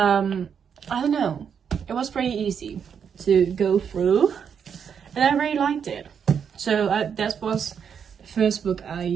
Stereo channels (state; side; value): quieter; left; 7.3 dB